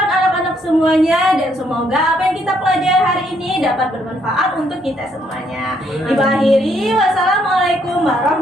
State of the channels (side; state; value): both; normal; correlation 0.71